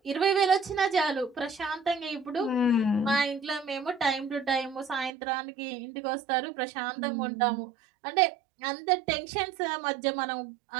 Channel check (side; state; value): left; drops out; at 5.1 s